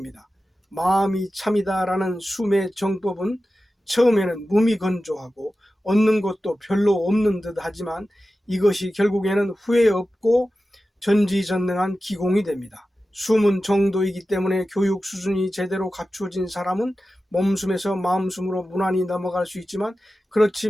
마음이 참이다라는 숨의 정법은 처음에는 무미건조하고 얻는 것도 별로 없는 듯 하지만 이것이 결국에는 후회 없고 전지전능한 기공이 됩니다. 숨은 정도이기 때문에 교육 수준이 제대로 갖추어진 사람은 몸숨에서 마음숨으로 무난히 넘어갈 수 있지만 그렇지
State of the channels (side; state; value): both; normal; correlation 0.94